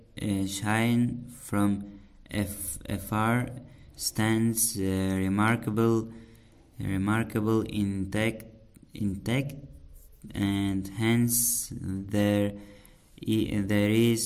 afar, stands remarkable intact, and hence there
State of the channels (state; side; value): identical; both; correlation 1.00